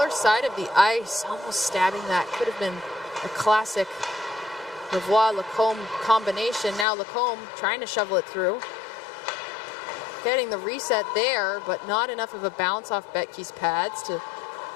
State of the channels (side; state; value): right; drops out; at 6.9 s